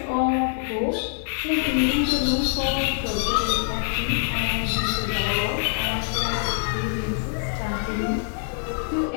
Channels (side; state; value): right; silent; digital silence